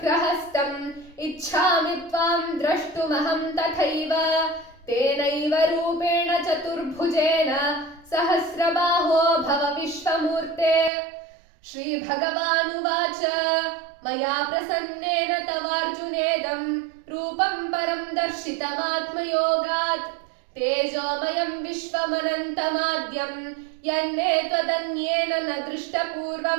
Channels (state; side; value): drops out; left; at 10.9 s